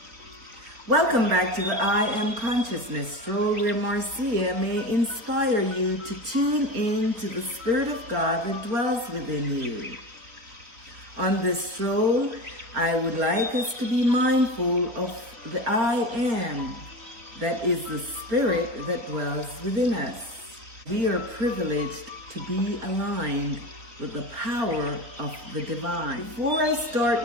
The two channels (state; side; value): late; left; 4.3 ms